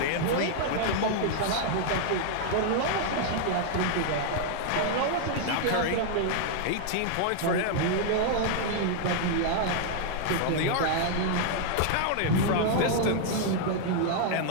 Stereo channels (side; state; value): both; different; correlation 0.00